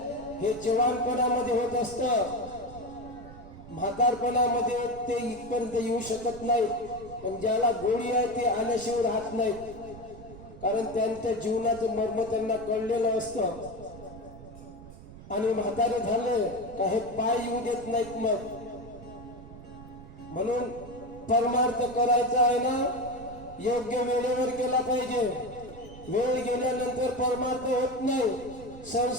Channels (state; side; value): noise; right; rumble, 16 dB below the sound